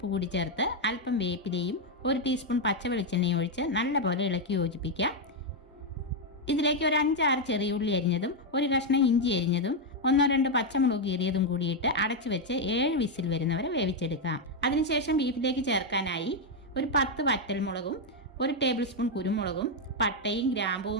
കൂടി ചേർത്ത് അല്പം വേപ്പിലയും 1 ടീസ്പൂൺ പച്ച വെളിച്ചെണ്ണയും ഒഴിച്ച് നല്ലപോലെ ഇളക്കി യോജിപ്പിക്കാം. ഇതിലേക്ക് ഒരു 5-6 ചെറിയ ഉള്ളി അരിഞ്ഞതും 1 കഷ്ണം ഇഞ്ചി അരിഞ്ഞതും 1-2 പച്ചമുളക് കീറിയതും കൂടിയിട്ട് അടച്ചു വെച്ച് 7 വിസിൽ വരുന്നവരെ വേവിച്ചെടുക്കാം. അതിനുശേഷം ബീഫിലേക്ക് ചേർക്കാനായി ഒരു 10 വറ്റൽമുളകും 1 ടേബിൾ സ്പൂൺ കുരുമുളകും പട്ടയും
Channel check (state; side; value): normal; both; correlation 0.02